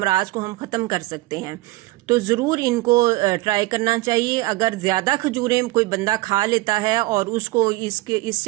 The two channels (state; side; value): quieter; left; 20.2 dB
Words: کو ہم ختم کر سکتے ہیں، تو ضرور ان کو ٹرائی کرنا چاہیے۔ اگر زیادہ کھجوریں کوئی بندہ کھا لیتا ہے اور اس کو اس